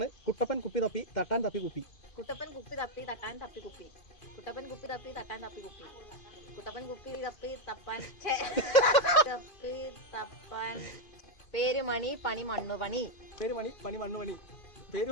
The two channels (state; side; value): late; right; 2.5 ms